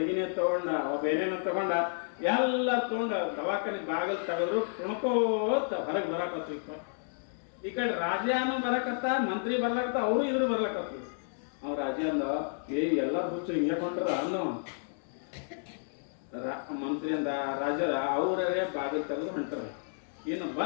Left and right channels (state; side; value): silent; right; digital silence